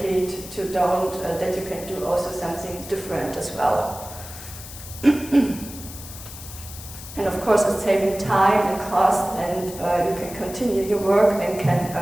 that you can do also something different as well. And of course it's saving time and cost, and you can continue your work and can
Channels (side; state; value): left; noise; hiss, 13 dB below the sound